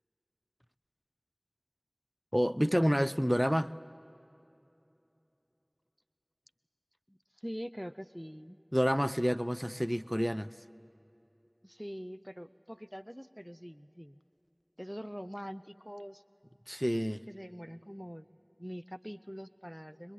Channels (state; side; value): identical; both; correlation 1.00